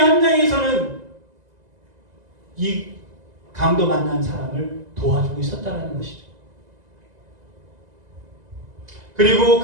이 강도 만난 사람을 도와주고 있었다는 것이죠. 그리고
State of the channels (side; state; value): left; late; 2.0 ms